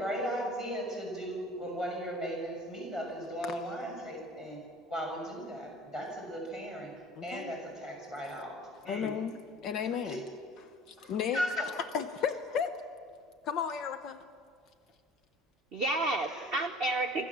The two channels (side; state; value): both; normal; correlation 0.46